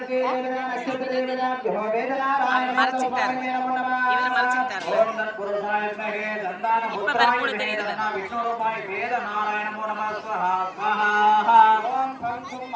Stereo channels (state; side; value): identical; both; correlation 1.00